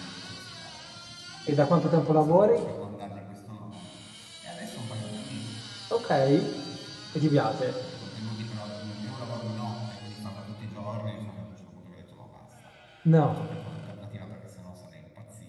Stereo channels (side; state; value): both; identical; correlation 1.00